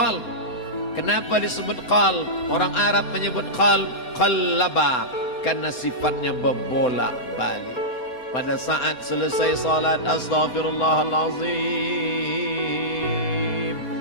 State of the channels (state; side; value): late; right; 4.2 ms